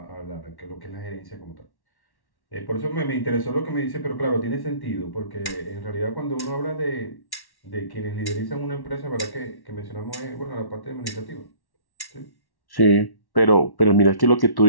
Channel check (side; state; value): right; late; 1.1 ms